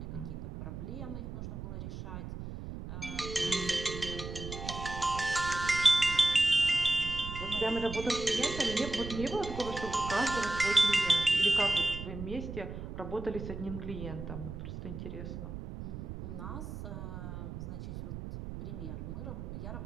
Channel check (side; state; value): right; noise; rumble, 8 dB below the sound